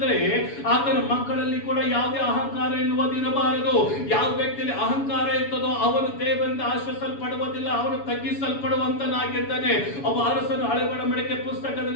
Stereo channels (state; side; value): late; right; 7.1 ms